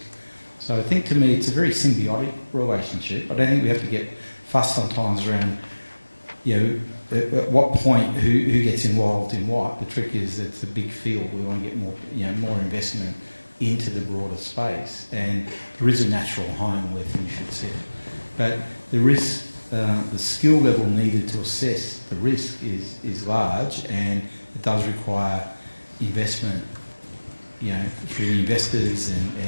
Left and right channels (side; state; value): both; inverted; correlation -1.00